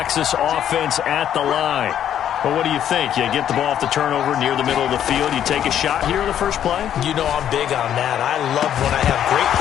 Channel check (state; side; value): quieter; right; 10.2 dB